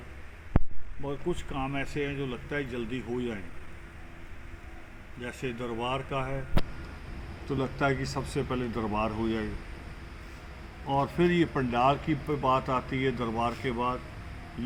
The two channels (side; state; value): both; identical; correlation 1.00